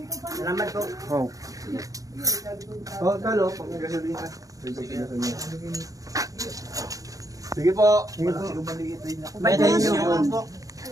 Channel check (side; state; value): left; late; 0.17 ms